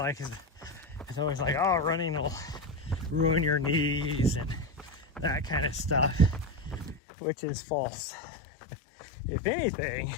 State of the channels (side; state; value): right; drops out; at 7.0 s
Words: always like, oh, running will ruin your knees and that kind of stuff, which is false. If anything,